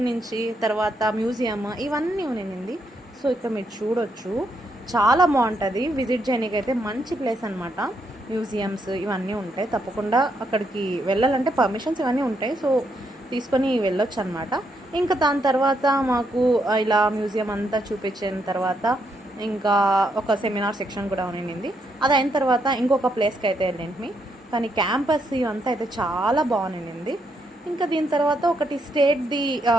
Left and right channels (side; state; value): both; normal; correlation 0.77